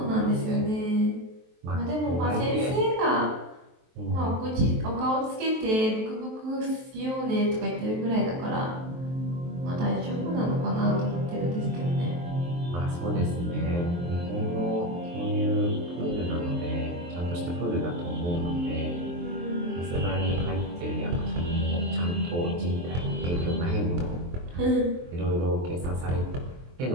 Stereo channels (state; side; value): late; left; 23 ms